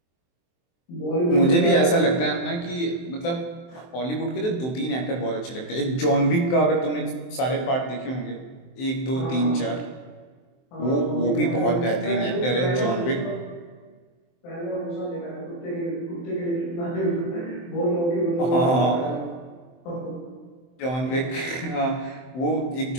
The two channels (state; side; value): late; right; 23 ms